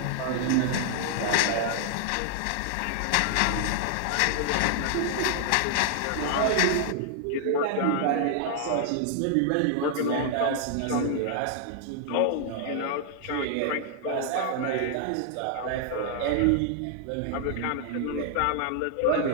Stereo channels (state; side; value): different; both; correlation 0.00